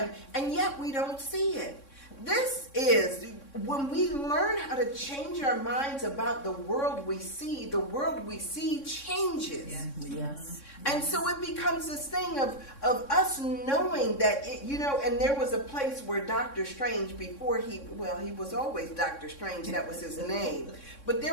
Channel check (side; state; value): right; late; 3.6 ms